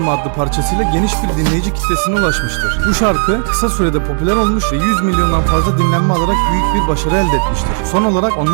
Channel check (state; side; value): silent; left; digital silence